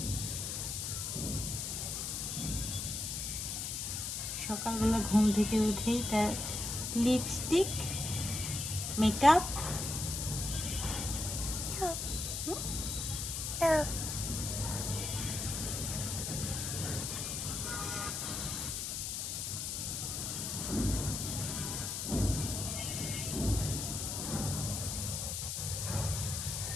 সকালবেলা ঘুম থেকে উঠেই তার লিপস্টিক মেকআপ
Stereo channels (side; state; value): left; noise; hiss, 3 dB below the sound